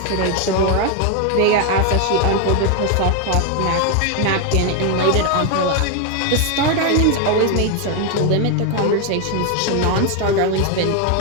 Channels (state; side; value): different; both; correlation 0.01